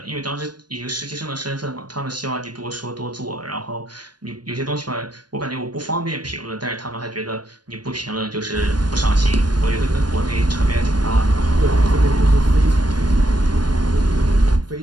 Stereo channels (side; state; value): left; late; 0.70 ms